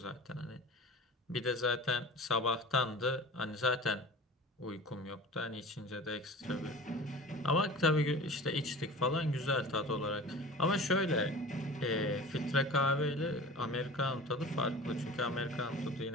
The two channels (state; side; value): normal; both; correlation 0.37